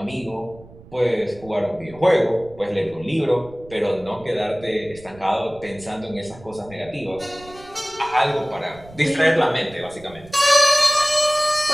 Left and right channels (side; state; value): right; noise; rumble, 21 dB below the sound